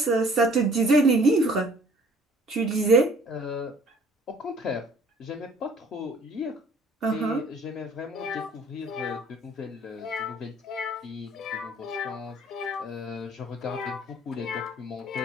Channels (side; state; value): both; normal; correlation 0.55